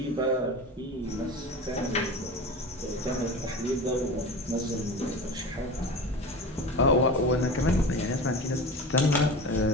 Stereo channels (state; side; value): normal; both; correlation 0.31